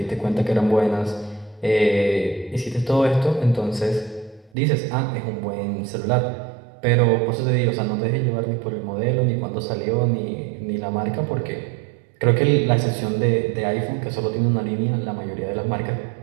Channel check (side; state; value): left; drops out; at 4.5 s